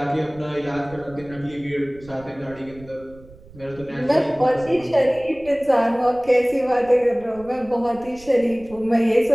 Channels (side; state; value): right; noise; rumble, 22 dB below the sound